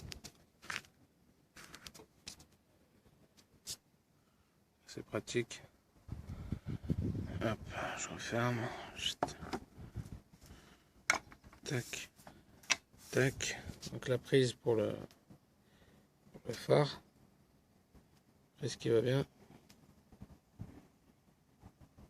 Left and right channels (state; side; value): identical; both; correlation 1.00